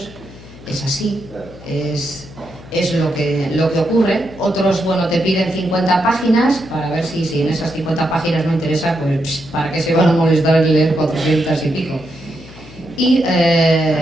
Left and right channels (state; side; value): noise; left; hum, 19 dB below the sound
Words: es así, es lo que ocurre. Otros, bueno, te piden 50 páginas para ver si en esas 50 páginas no interesa, pues para qué se van a molestar en leer 400 y pico. Y